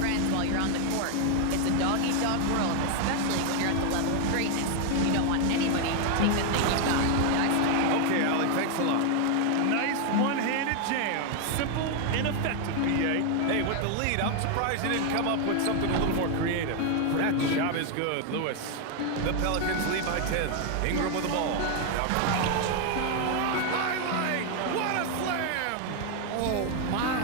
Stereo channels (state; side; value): different; both; correlation 0.00